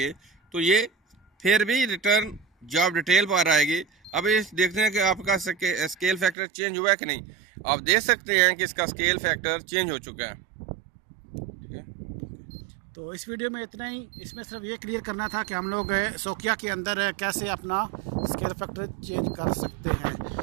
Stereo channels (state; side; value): drops out; left; at 6.4 s